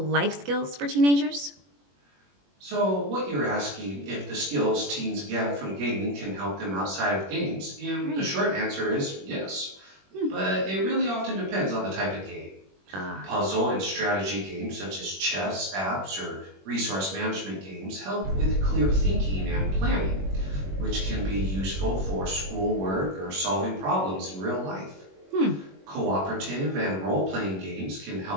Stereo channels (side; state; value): left; late; 21 ms